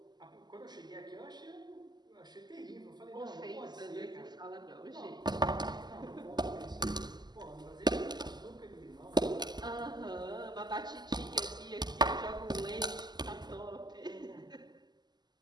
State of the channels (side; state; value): left; late; 0.21 ms